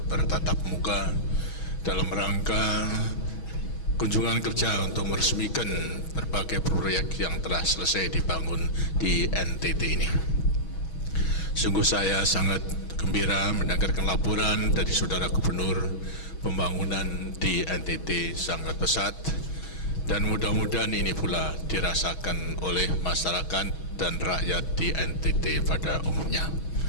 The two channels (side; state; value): right; late; 6.2 ms